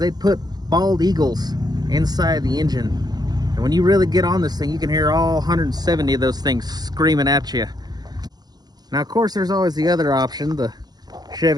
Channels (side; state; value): left; late; 0.19 ms